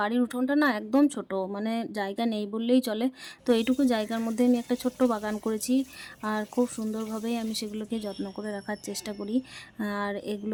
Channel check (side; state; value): both; identical; correlation 1.00